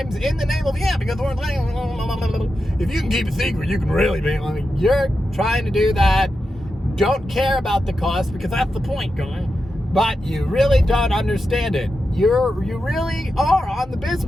in the name of, because we're if you can keep a secret, you can really be. You're trying to do that. Don't care about the cost, because that's the point, going. But you really don't understand it. You really are on the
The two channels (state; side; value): normal; both; correlation 0.89